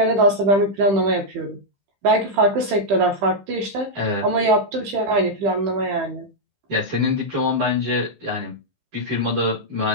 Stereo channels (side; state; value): left; late; 15 ms